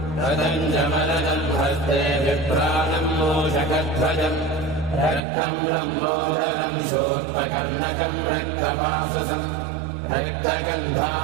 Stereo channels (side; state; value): left; drops out; at 5.2 s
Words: रदञ्जमलनम् हस्ते विप्राणम् मूषकध्वजम् रक्तम् लम्बोदरम् शोत्पकर्णकम् रक्तपाससम्